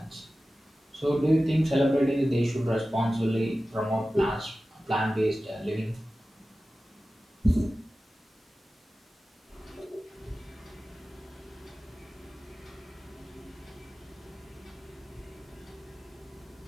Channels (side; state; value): both; normal; correlation 0.95